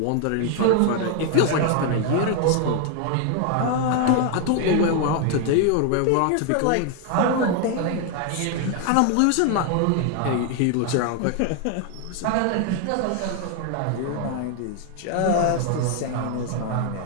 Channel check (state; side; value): different; both; correlation 0.00